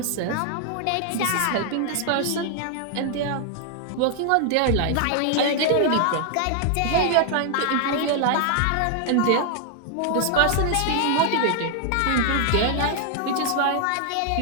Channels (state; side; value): different; both; correlation 0.00